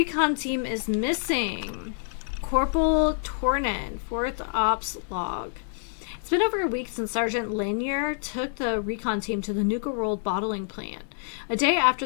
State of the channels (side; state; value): right; silent; digital silence